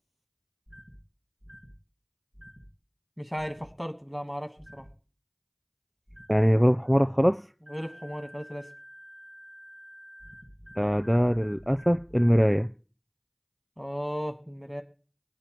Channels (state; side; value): identical; both; correlation 1.00